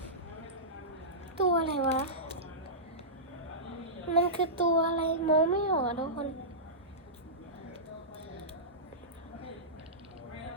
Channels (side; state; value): both; normal; correlation -0.17